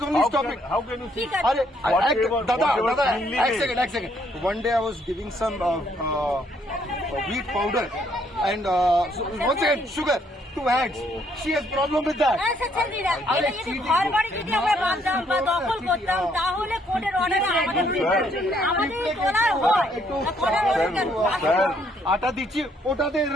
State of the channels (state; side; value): normal; both; correlation 0.69